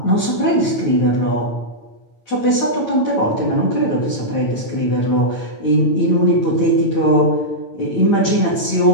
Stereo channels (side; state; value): right; late; 9.0 ms